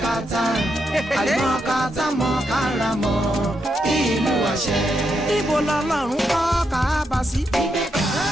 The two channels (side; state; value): both; normal; correlation 0.82